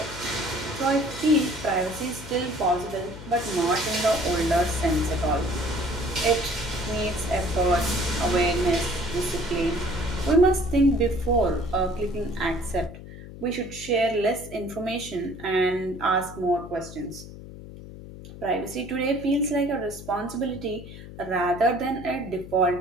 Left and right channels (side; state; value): left; noise; hum, 14 dB below the sound